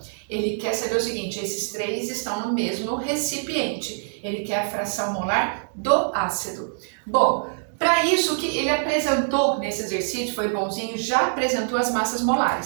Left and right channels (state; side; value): silent; left; digital silence